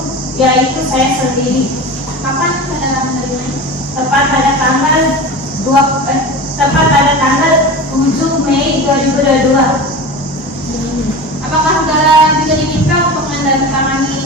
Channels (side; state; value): both; normal; correlation 0.30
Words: yaitu saya sendiri. Kapan saudara menerimanya? Tepat pada tanggal 7 Mei 2022. Apakah saudara juga diminta untuk